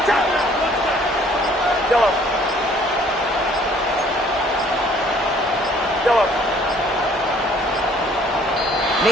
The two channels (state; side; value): normal; both; correlation 0.58